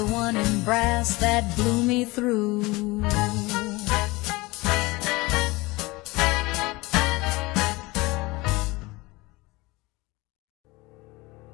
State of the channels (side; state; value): right; quieter; 22.5 dB